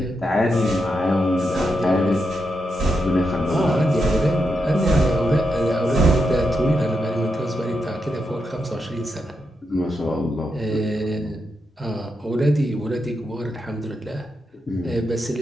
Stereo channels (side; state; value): both; normal; correlation 0.85